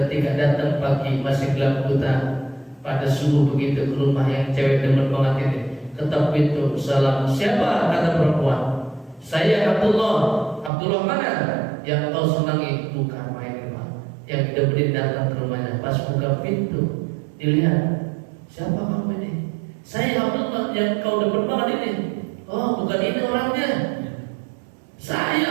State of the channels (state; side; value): drops out; left; at 10.7 s